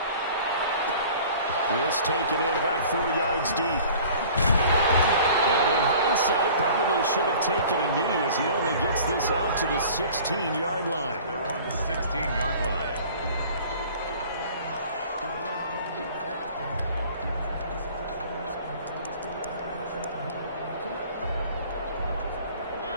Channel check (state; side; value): inverted; both; correlation -0.47